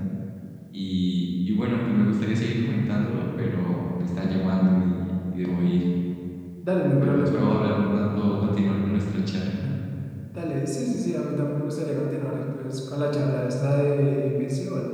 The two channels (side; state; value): both; identical; correlation 1.00